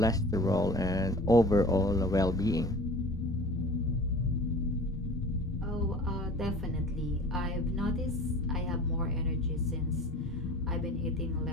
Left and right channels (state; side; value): normal; both; correlation 0.42